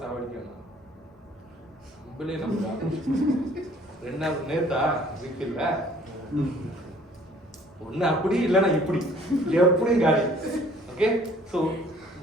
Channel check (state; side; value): normal; both; correlation 0.56